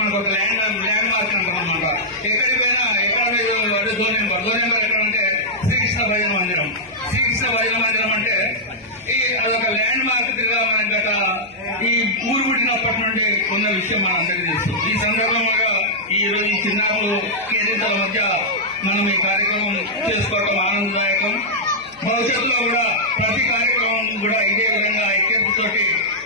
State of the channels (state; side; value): noise; left; hum, 27 dB below the sound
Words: మనకు ఒక ల్యాండ్ మార్క్ అంటాం అనమాట. ఎక్కడికి పోయినా ఎక్కడ జోన్ నెంబర్ ఎక్కడంటే శ్రీకృష్ణ భజన మందిరం. శ్రీకృష్ణ భజన మందిరం అంటే అదొక ల్యాండ్ మార్క్ గా మనకి గత ఈ ఊరు పుట్టినప్పటి నుండి ఉన్న విషయం మన అందరికీ తెలుసు. ఈ సందర్భంగా ఈ రోజు ఈ చిన్నారులు కేరింతల మధ్య మనం ఈ కార్యక్రమం చేసుకోవడం ఆనందదాయకం. భవిష్యత్తులో కూడా ప్రతి కార్యక్రమం కూడా ఇదే విధంగా ఐక్యతతోటి